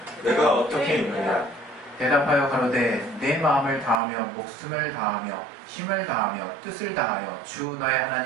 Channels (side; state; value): left; drops out; at 4.0 s